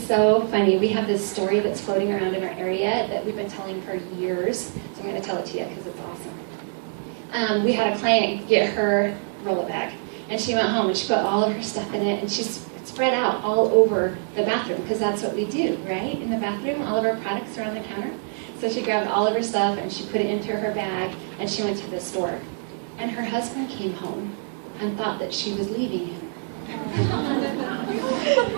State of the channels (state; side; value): silent; left; 62 dB below the other